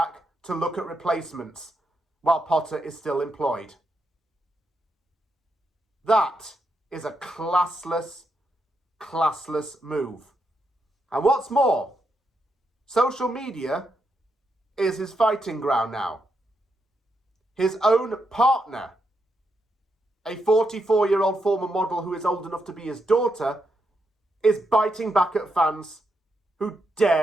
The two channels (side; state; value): both; normal; correlation 0.82